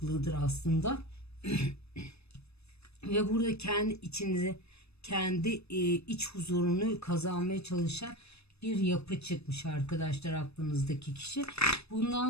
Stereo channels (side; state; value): right; late; 0.79 ms